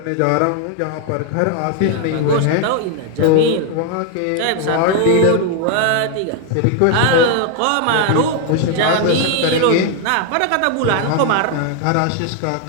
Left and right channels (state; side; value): different; both; correlation 0.00